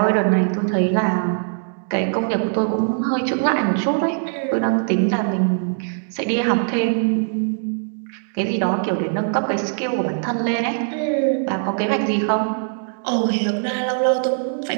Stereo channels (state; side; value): silent; left; digital silence